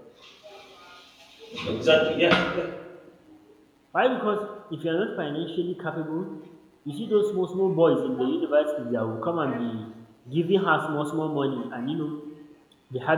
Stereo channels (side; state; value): both; identical; correlation 1.00